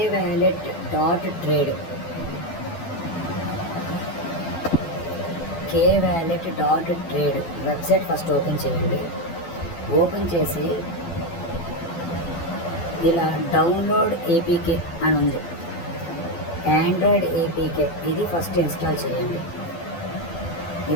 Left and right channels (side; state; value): right; late; 12 ms